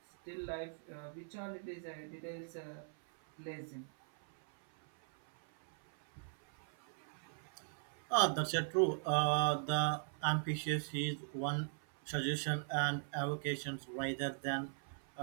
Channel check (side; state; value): left; silent; 51 dB below the other